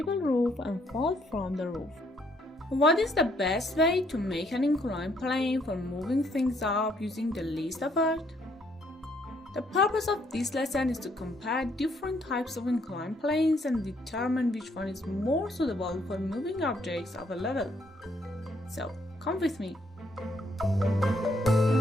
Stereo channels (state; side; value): normal; both; correlation 0.69